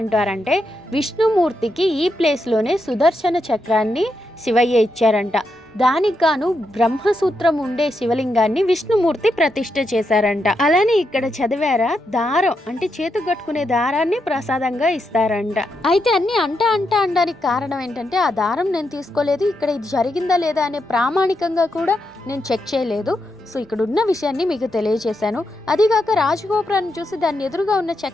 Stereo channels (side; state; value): both; normal; correlation 0.83